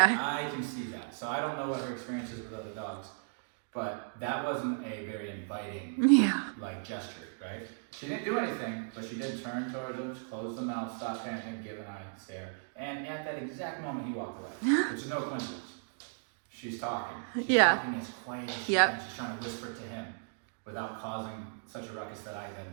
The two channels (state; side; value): silent; left; digital silence